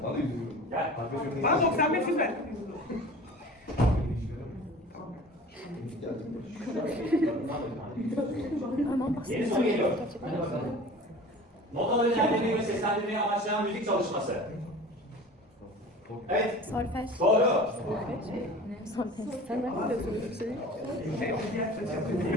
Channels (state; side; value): normal; both; correlation 0.41